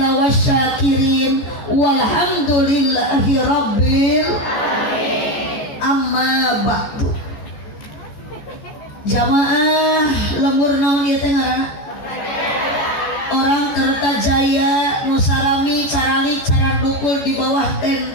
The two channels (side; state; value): right; late; 14 ms